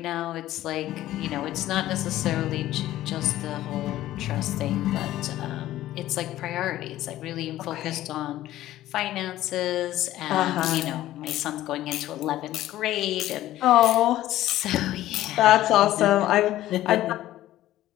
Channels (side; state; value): right; quieter; 14.4 dB